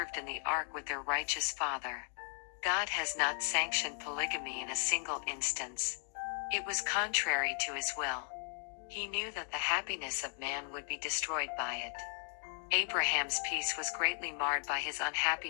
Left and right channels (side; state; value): right; silent; digital silence